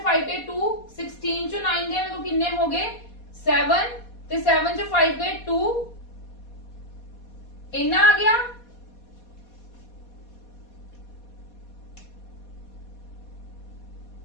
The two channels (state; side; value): late; right; 4.2 ms